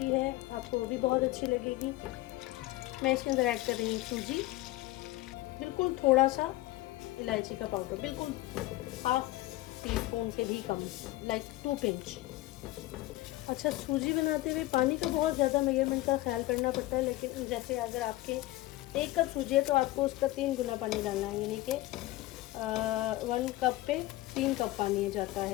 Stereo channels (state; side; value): quieter; right; 18.0 dB